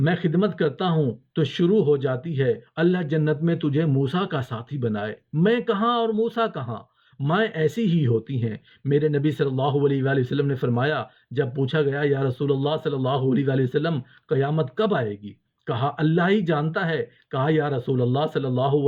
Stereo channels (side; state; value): both; identical; correlation 1.00